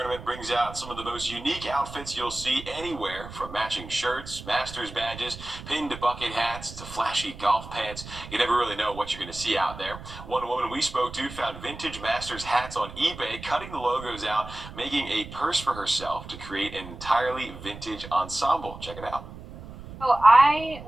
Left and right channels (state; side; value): noise; right; rumble, 13 dB below the sound